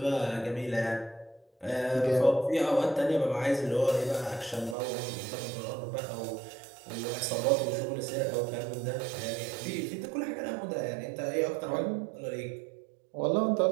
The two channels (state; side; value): drops out; left; at 4.8 s